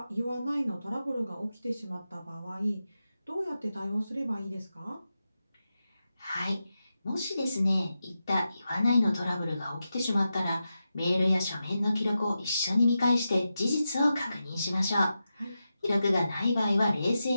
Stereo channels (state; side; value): inverted; both; correlation -0.90